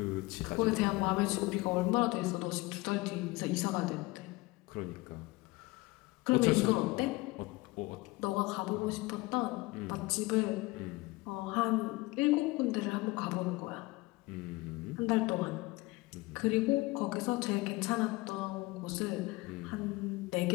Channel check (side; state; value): right; quieter; 22.0 dB